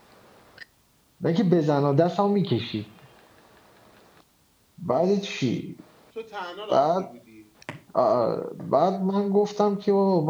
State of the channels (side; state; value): both; identical; correlation 1.00